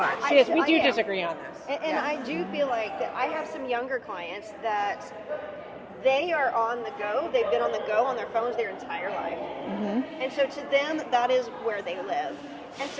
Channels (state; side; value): identical; both; correlation 1.00